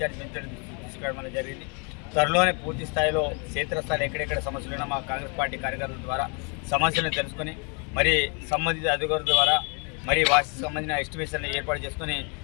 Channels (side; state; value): right; quieter; 35.3 dB